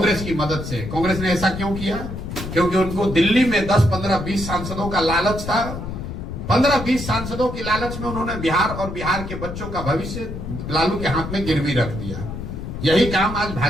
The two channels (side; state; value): left; noise; rumble, 7 dB below the sound